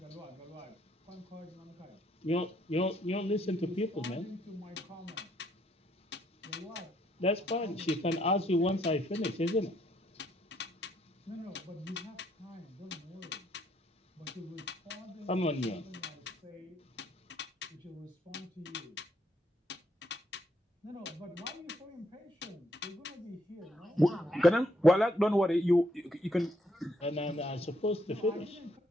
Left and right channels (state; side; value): normal; both; correlation 0.72